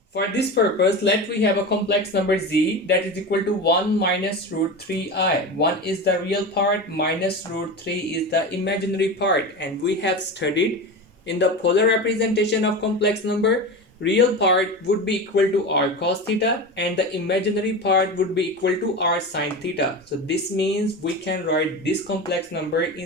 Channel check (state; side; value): normal; both; correlation 0.26